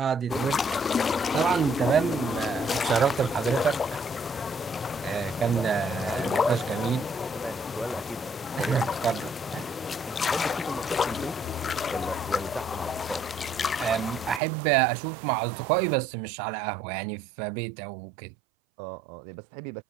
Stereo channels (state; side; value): drops out; left; at 14.4 s